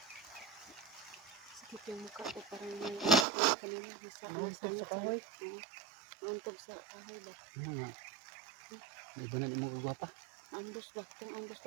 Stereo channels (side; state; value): left; drops out; at 3.2 s